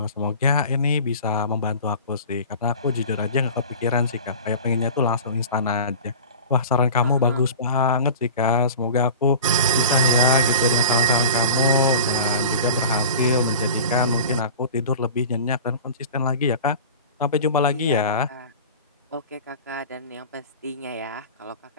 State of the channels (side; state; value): both; inverted; correlation -0.38